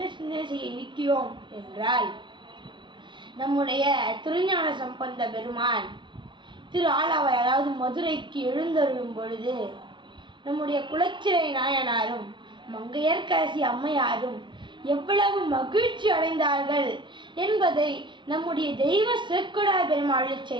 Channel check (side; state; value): left; late; 0.23 ms